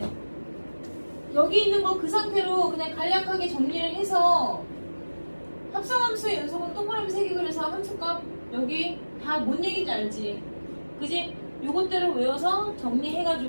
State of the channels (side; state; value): both; inverted; correlation -1.00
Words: 여기 있는 거 그 상태로 그냥 간략하게 정리를 해서 합성함수의 연속은 동그라미 3개 그려서 함수값 여기 다 뭔 얘기인지 알지? 그지? 요것대로 외워서